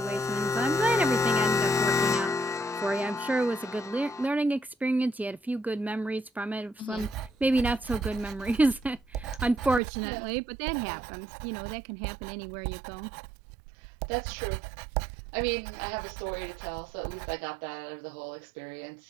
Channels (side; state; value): left; drops out; at 9.8 s